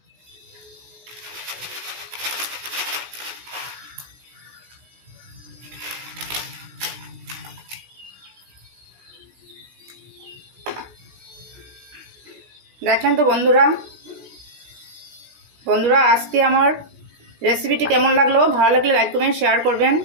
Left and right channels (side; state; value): left; late; 16 ms